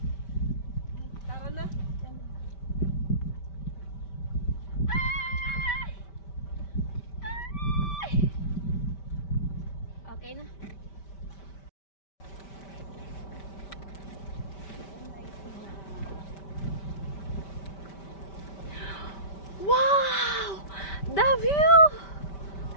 Tara na. Okay na. Wow! The view!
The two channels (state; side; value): late; right; 5.1 ms